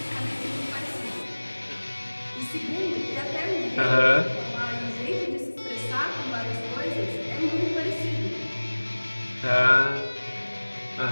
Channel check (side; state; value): both; inverted; correlation -1.00